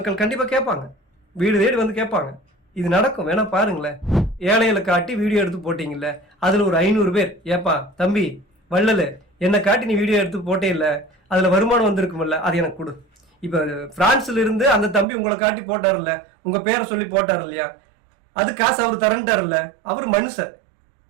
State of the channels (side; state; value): left; drops out; at 15.1 s